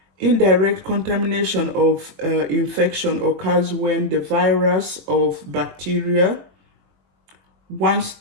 Indirect contamination of infection occurs when the virus of bacteria, once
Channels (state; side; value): late; left; 21 ms